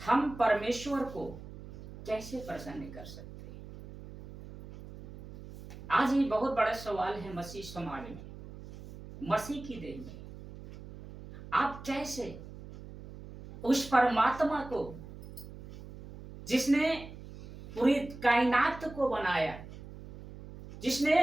हम परमेश्वर को कैसे प्रसन्न कर सकते हैं। आज ये बहुत बड़ा सवाल है मसीह समाज में, मसीह की देह में। आप कैसे उस परमात्मा को जिसने पूरी कायनात को बनाया, जिसने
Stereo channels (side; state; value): right; noise; hum, 15 dB below the sound